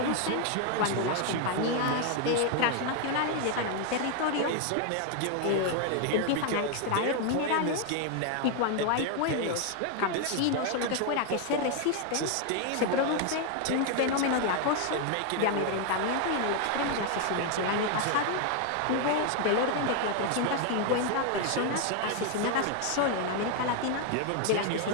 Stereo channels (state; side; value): different; both; correlation 0.00